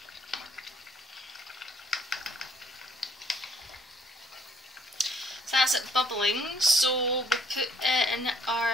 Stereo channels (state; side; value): normal; both; correlation 0.65